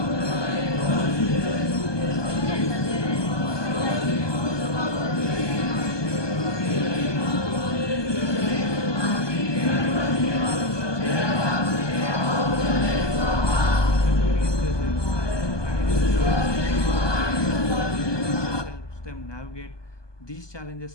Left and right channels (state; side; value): late; right; 1.2 ms